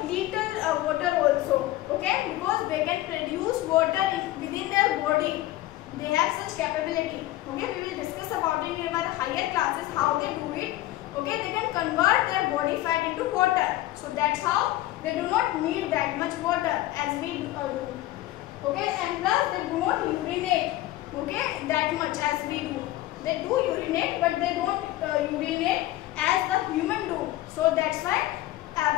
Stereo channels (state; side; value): quieter; right; 16.1 dB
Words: little water also. Okay, because they can produce water within their body. They have such capability. Okay, we will discuss about it in our higher classes how they do it. Okay, they can convert their body fat into water. So that's how they do not need that much water as we do. Okay, and plus they do not urinate. Okay, that much as we do. They do urinate, but they don't urinate as the human do. So that's why